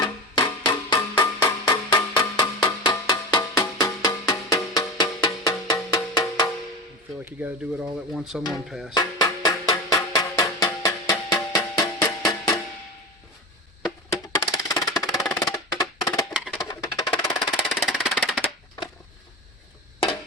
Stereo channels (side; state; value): both; normal; correlation 0.25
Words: feel like you got to do it all at once on one pass.